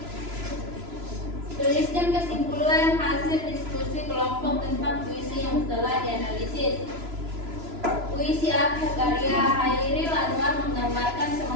Tuliskan kesimpulan hasil diskusi kelompok tentang puisi yang telah dianalisis. Puisi Aku karya Chairul Anwar menggambarkan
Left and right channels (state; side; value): late; left; 3.0 ms